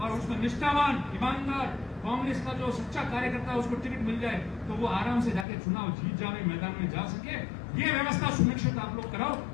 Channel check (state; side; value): drops out; right; at 5.5 s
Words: उसमें निष्ठावान ईमानदार कांग्रेस का जो सच्चा कार्यकर्ता है उसको टिकट मिल जाए तो वो आराम से जाके चुनाव जीत जावे, मैदान में जा सके, ये व्यवस्था सुनिश्चित आप लोग कराओ।